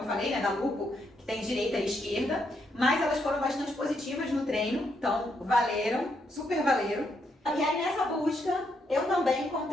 falei, né, da Lupo, que tem direita e esquerda, mas elas foram bastante positivas no treino, então valeram, super valeram. E aí nessa busca, eu também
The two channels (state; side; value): normal; both; correlation 0.77